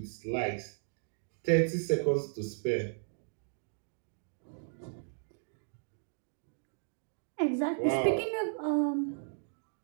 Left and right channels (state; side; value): silent; left; digital silence